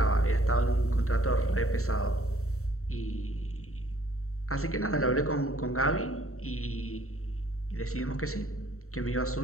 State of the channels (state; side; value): late; right; 0.64 ms